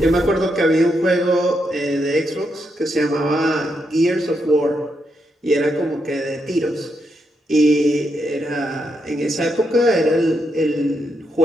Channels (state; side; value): normal; both; correlation 0.81